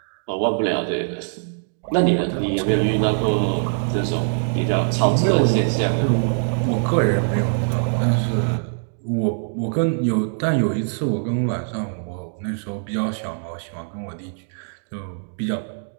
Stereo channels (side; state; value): left; silent; digital silence